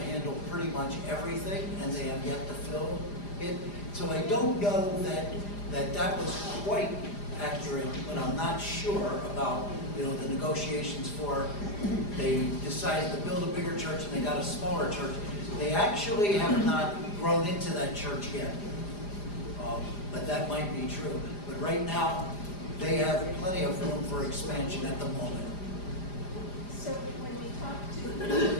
pretty much everything, and they have yet to fill it. So I don't know that was quite accurate, but I'm not sure about, the negotiations for, they decided to build a bigger church and they got a smaller church. They actually have not grown into that church yet, but that might be true. But right now, they have plenty of room for expansion at the moment. So when we talked to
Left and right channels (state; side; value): late; right; 4.9 ms